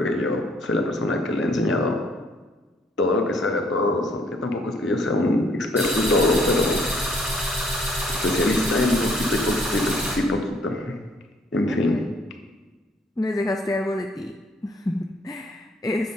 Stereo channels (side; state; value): both; normal; correlation 0.64